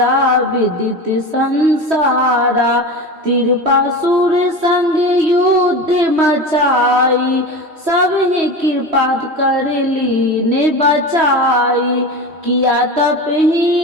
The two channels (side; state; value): left; late; 3.1 ms